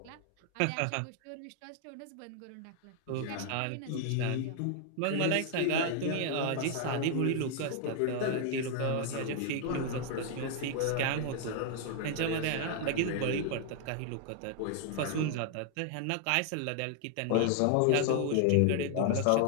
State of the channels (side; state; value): both; different; correlation 0.00